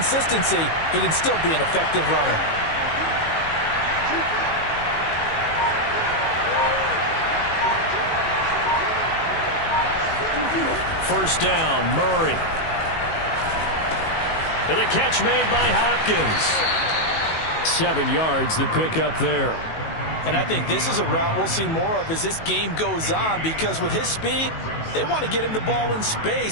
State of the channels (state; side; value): late; right; 18 ms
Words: he can still be an effective runner. First down, Murray. And the catch made by Hopkins. 7 yards, the pickup there. And I think this is a route we'll see more of as this game goes on, because with his speed, they want to get him the ball in